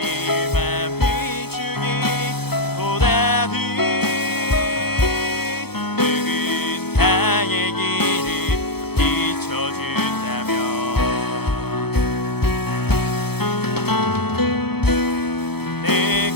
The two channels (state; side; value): late; right; 0.97 ms